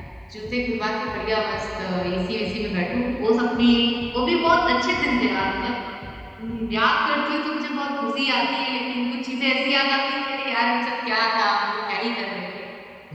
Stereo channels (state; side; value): identical; both; correlation 1.00